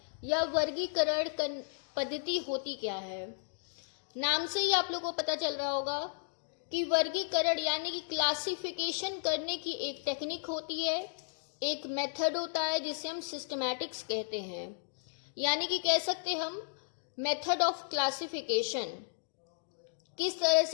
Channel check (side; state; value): right; silent; digital silence